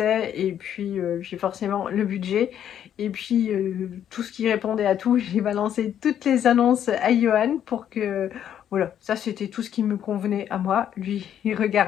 et puis forcément le budget. Et puis tout ce qui répondait à tout, j'ai balancé toutes les annonces à Johan pour que voilà, ça c'était tout ce qui me convenait à moi. Lui, il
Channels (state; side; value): quieter; right; 9.9 dB